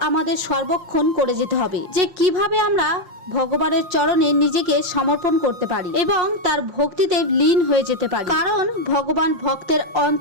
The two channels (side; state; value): left; late; 5.8 ms